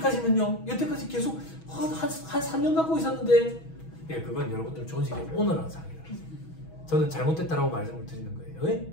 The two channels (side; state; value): right; late; 6.2 ms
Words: 여태까지 계속 한 3년 갖고 있었는데 예, 그건 여러분들 조직의 오너랑 상의를 하세요. 저는 잘못됐다라고 말씀을 드리는 거예요. 예?